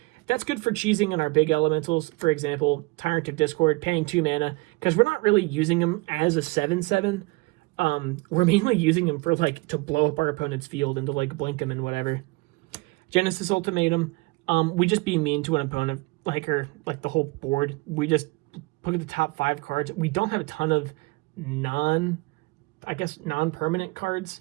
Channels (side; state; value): left; quieter; 25.1 dB